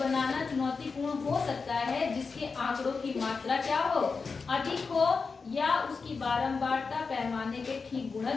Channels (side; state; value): right; quieter; 4.8 dB